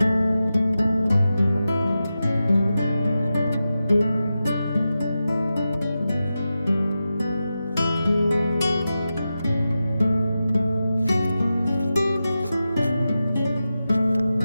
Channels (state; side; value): inverted; both; correlation -0.92